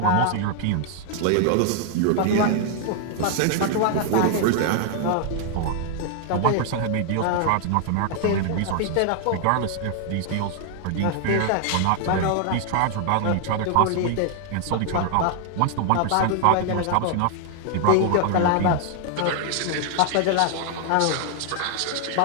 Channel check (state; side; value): different; both; correlation 0.00